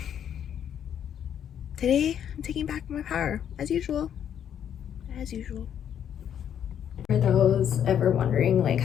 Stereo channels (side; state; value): right; quieter; 9.3 dB